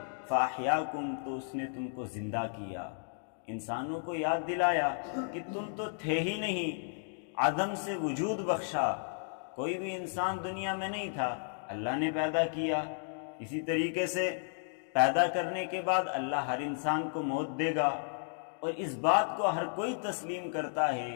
فاحیاکم، تو اس نے تم کو زندہ کیا۔ انسانوں کو یاد دلایا کہ تم تو تھے ہی نہیں، عدم سے وجود بخشا، کوئی بھی انسان دنیا میں نہیں تھا، اللہ نے پیدا کیا۔ اسی طریقے سے پیدا کرنے کے بعد اللہ ہر انسان کو موت دے گا، اور اس بات کو ہر کوئی تسلیم کرتا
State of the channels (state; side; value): silent; right; digital silence